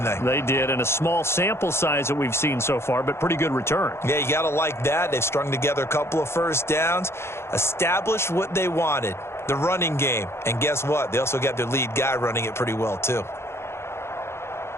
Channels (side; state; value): right; late; 0.12 ms